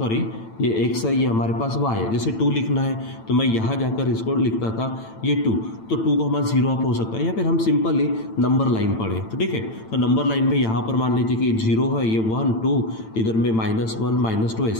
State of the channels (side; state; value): right; late; 9.0 ms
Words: ये x है, ये हमारे पास y है। जैसे 2 लिखना है तो मैं यहाँ जाकर इसको लिखता था ये 2, तो 2 को हमारा 0 अप हो सकता है या फिर हम सिंपली नंबर लाइन पढ़े। तो ठीक है, तो नंबर लाइन में यहाँ पर मान लीजिए कि 0 है, ये 1 2, इधर में -1 -2